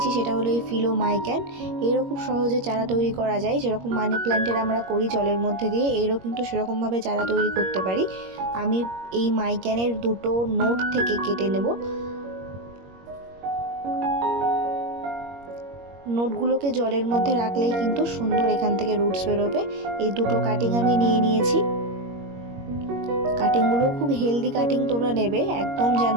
সেটা হলো এই ফিলোমাইক্যান। এরও খুব সহজে চারা তৈরি করা যায়, যেরকম মানি প্ল্যান্টের আমরা করি জলের মধ্যে দিয়ে, এরও কিন্তু সেরকমভাবে চারা তৈরি করতে পারি। আমি এই মাইক্যানের দুটো নোট থেকে কেটে নেব। নোটগুলোকে জলের মধ্যে রাখলেই কিন্তু সুন্দর এখান থেকে রুটস বেরোবে। এই দুটো কাটিং আমি নিয়ে নিয়েছি। কাটিংগুলো খুব হেলদি কাটিং তোমরা নেবে, একদম যেন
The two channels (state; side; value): late; left; 21 ms